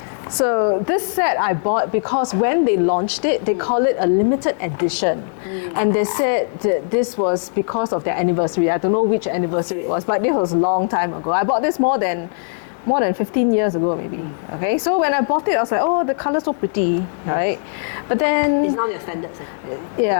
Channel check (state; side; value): silent; right; 66 dB below the other